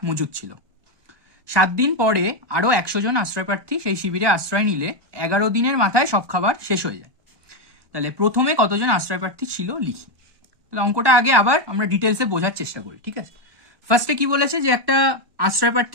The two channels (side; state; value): left; late; 1.2 ms